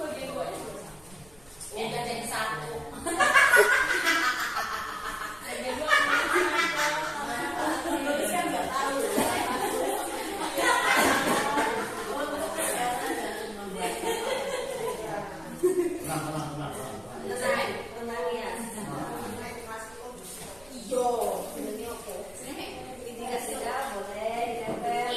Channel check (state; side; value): noise; right; rumble, 26 dB below the sound